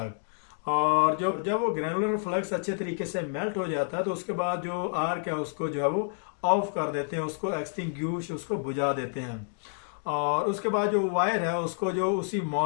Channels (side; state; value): right; silent; digital silence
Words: और जो जब वो ग्रेनुलर फ्लक्स अच्छे तरीके से मेल्ट हो जाता है तो उसके बाद जो आर्क है उसको जो है वो ऑफ कर देते हैं, उसको एक्सटिंग्विश उसको बुझा देते हैं। और उसके बाद जो वायर है उसको जो उसी